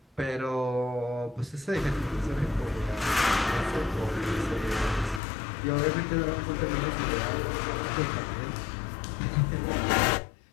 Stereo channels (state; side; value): drops out; right; at 5.2 s